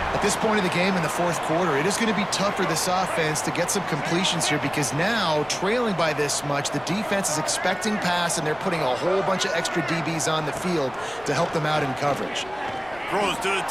At this point of the game in the 4th quarter, it is going to be tough for this offense to get some completions here because now, trailing by this much, the defense is expecting pass, and they're putting a whole bunch of extra DBs on the field to help them out in coverage. Throws to the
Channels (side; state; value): left; noise; rumble, 23 dB below the sound